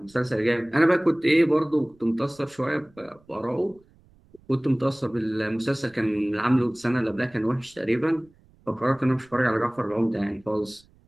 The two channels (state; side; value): noise; right; rumble, 30 dB below the sound